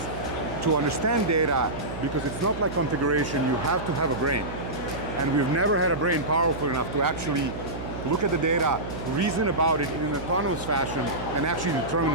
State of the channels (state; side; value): noise; right; hum, 9 dB below the sound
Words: to understand data, because it's not like configuration, you have to have a brain. And we've never had a brain powerful enough to actually look at the data, reason about it in an autonomous fashion, and actually